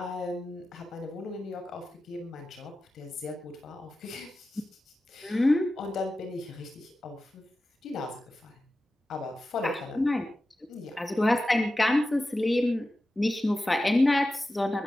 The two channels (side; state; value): both; normal; correlation 0.94